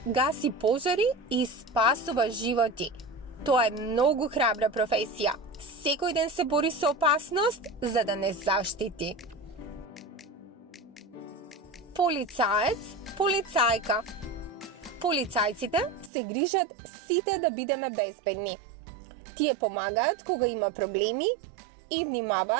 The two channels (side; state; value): left; drops out; at 16.1 s